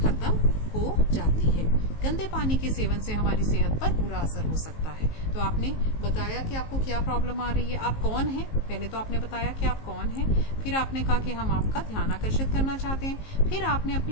हो जाती है। गंदे पानी के सेवन से हमारी सेहत पर बुरा असर हो सकता है। तो आपने बताया कि आपको क्या प्रॉब्लम आ रही है, आप कौन हैं। पहले तो आपने बताया कि आप कौन हैं, फिर आपने कहा कि हम आपका ध्यान आकर्षित करना चाहते हैं, फिर आपने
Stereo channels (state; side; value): late; right; 19 ms